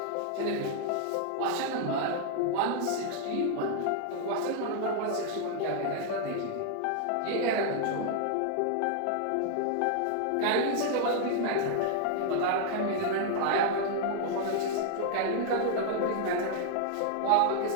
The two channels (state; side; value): different; both; correlation 0.00